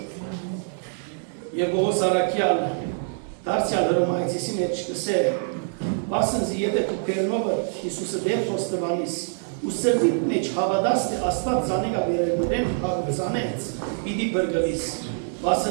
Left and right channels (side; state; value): left; silent; digital silence